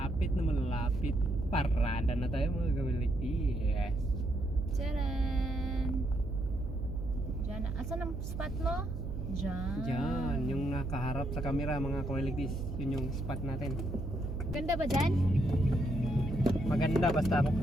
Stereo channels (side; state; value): right; noise; hum, 6 dB below the sound